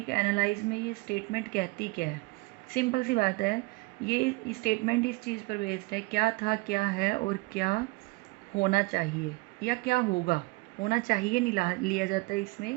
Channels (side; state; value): left; quieter; 24.4 dB